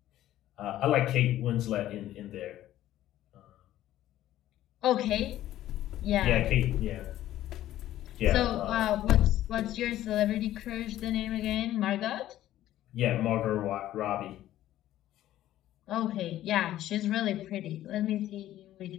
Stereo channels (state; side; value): quieter; right; 13.5 dB